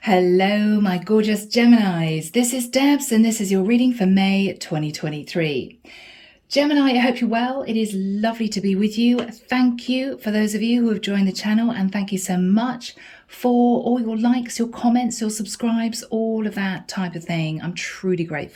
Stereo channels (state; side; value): identical; both; correlation 1.00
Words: Hello, my gorgeous Geminis. This is Debs, and this is your reading for May 2023. Gemini, I hope you're well. It is lovely to be with you. Thank you for those of you who have joined the channel, and thank you so much for all your likes, your comments, your subscribes, all of that type of thing. I'm truly